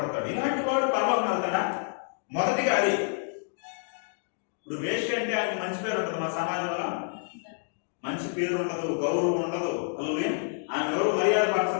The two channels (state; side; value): silent; right; 59 dB below the other